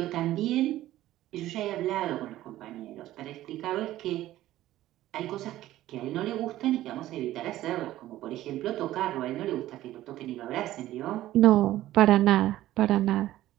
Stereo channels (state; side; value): quieter; left; 14.6 dB